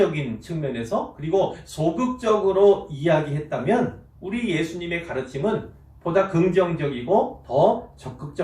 측면에서 그리고 소극적으로 이야기했다면 우리 예수님의 가르침은 보다 긍정적이고 더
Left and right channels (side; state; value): both; identical; correlation 1.00